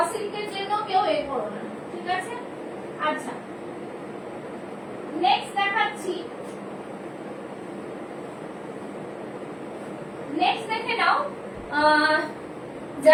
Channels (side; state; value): both; identical; correlation 1.00